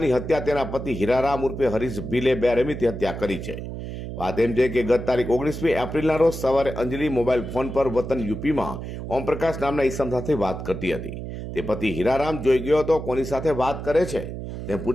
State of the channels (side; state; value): right; noise; hum, 8 dB below the sound